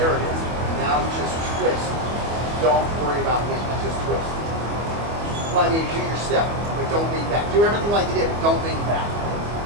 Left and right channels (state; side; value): late; left; 24 ms